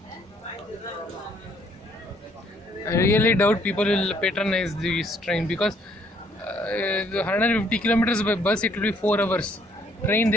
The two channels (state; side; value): normal; both; correlation 0.65